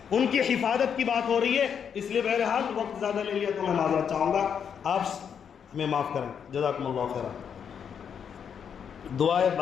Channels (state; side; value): quieter; right; 7.5 dB